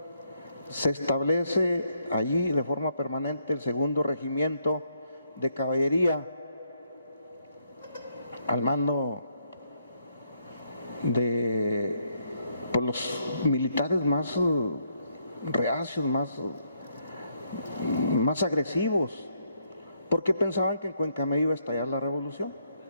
Se establece allí de forma permanente el segundo regimiento de caballería al mando de los militares más reacios, más agresivos, porque pensaban que en Cuencamé iba a estallar la revolución.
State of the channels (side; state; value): both; inverted; correlation -0.75